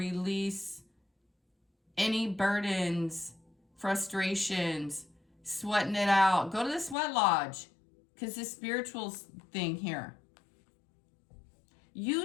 any burdens, frustrations, sweating it out. Go to the sweat lodge, because this spiritual thing here.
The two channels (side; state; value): right; drops out; at 7.0 s